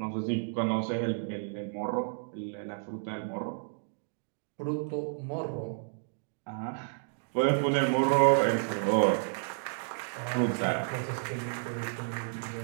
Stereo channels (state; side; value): silent; left; digital silence